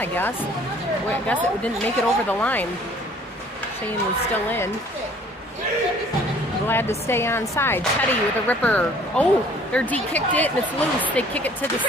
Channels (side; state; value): both; normal; correlation 0.55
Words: guess. I guess it didn't make it over the line. Cheyenne was still in. Glad to stay on side. Teddy with a ripper. Oh, their D kicked it and it's loose. They kick it to the